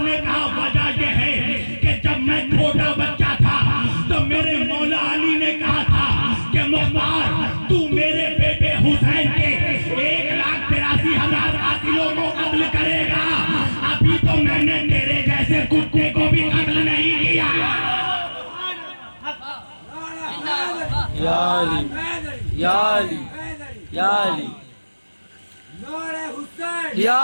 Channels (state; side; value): inverted; both; correlation -1.00